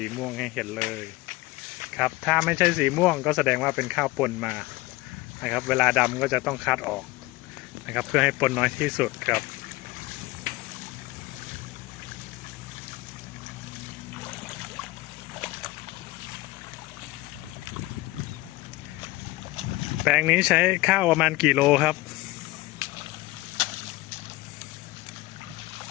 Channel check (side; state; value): right; quieter; 19.9 dB